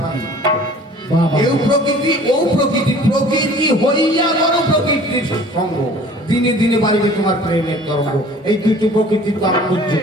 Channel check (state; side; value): normal; both; correlation 0.49